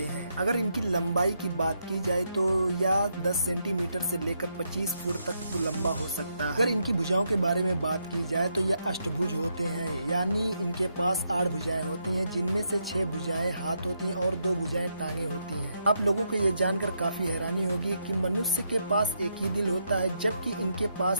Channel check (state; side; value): inverted; both; correlation -0.80